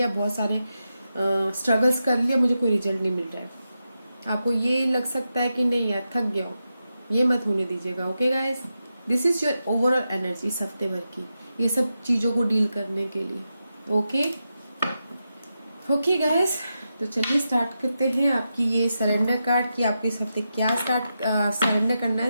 बहुत सारे स्ट्रगल्स कर लिया, मुझे कोई रिजल्ट नहीं मिल रहा है। आपको ये लग सकता है कि नहीं यार थक गया हूँ, ये मत होने दीजिएगा, okay guys. This is your overall energy इस हफ्ते भर की, ये सब चीजों को डील करने के लिए, ओके। ओके गाइस, तो चलिए स्टार्ट करते हैं आपकी ये सरेंडर कार्ड की, आपको इस हफ्ते क्या सरेंडर करना है,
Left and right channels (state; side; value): inverted; both; correlation -0.88